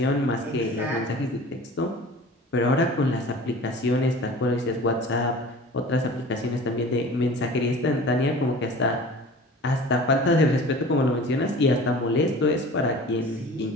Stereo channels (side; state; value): both; normal; correlation 0.41